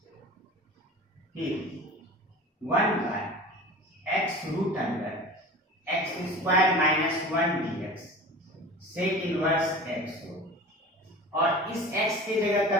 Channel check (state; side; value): normal; both; correlation 0.37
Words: फिर 1/x√x square minus 1 dx, sec inverse x हो। और इस x की जगह